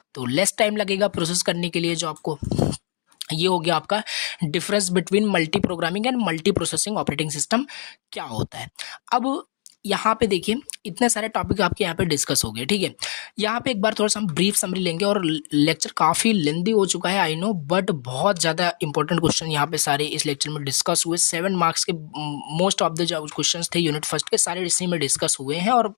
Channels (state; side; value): silent; right; digital silence